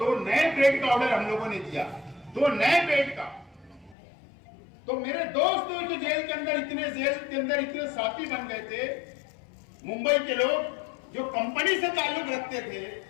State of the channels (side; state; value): right; drops out; at 4.0 s